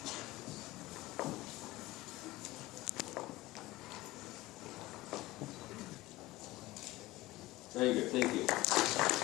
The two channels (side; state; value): right; quieter; 18.6 dB